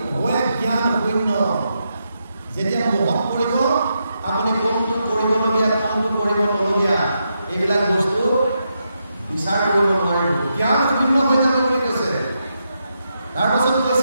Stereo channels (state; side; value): inverted; both; correlation -0.83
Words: হৈ জ্ঞান শূন্য। যেতিয়া মোহত পৰিব, আপুনি কোনটো কৰিবলগীয়া, কোনটো কৰিব নলগীয়া, এইবিলাক বস্তু বিচাৰ কৰিব নোৱাৰিব, জ্ঞান শূন্য হৈ যাব বুলি কৈছে। তাৰপাছত